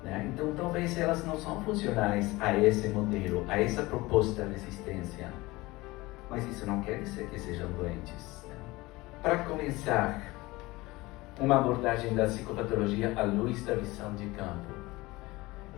Né? Então, talvez elas não são funcionais a esse modelo, a essa proposta de existência. Mas isso não quer dizer que sejam doentes. Né? Para começar, uma abordagem da psicopatologia à luz da visão de campo.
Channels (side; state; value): right; quieter; 20.9 dB